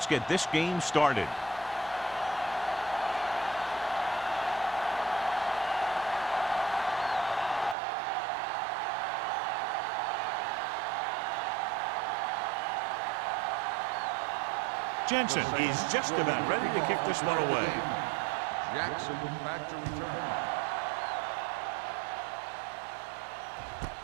get this game started. Jensen is just about ready to kick this one away. Jackson back to return.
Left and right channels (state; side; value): drops out; left; at 7.8 s